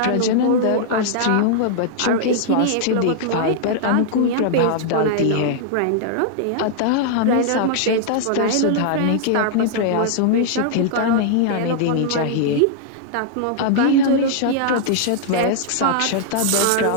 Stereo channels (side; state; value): both; different; correlation -0.01